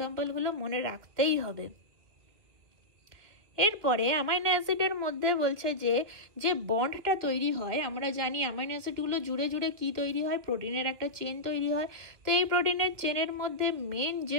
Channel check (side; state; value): left; late; 2.6 ms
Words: মনে রাখতেই হবে। এরপরে অ্যামাইনো অ্যাসিডের মধ্যে বলছে যে বন্ডটা তৈরি হয়, আমরা জানি অ্যামাইনো অ্যাসিডগুলো জুড়ে জুড়ে কি তৈরি হয়, প্রোটিনের একটা চেন তৈরি হয়। তো এই প্রোটিনের চেনের মধ্যে মেন